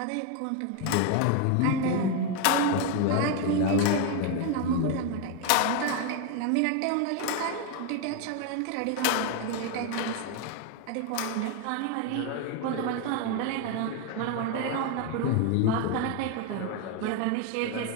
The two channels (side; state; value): both; different; correlation 0.01